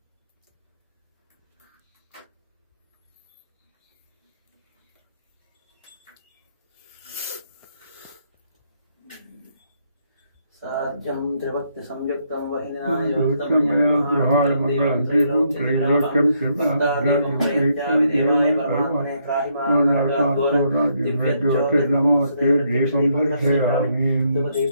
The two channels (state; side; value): inverted; both; correlation -0.74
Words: साज्यं त्रिभक्ति संयुक्तं